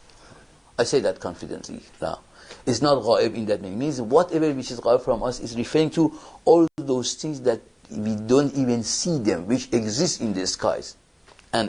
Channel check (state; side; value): identical; both; correlation 1.00